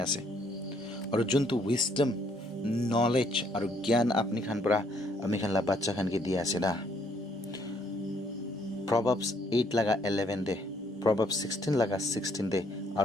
আছে আৰু যোনটো উইজডম নলেজ আৰু জ্ঞান আপুনি খান পৰা আমি খানলা বাচ্চা খানকে দিয়া আছে না Proverbs 8 laga 11 de Proverbs 16 laga 16 de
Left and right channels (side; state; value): both; normal; correlation 0.67